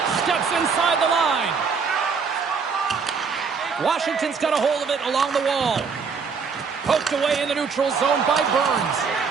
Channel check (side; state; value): left; quieter; 5.5 dB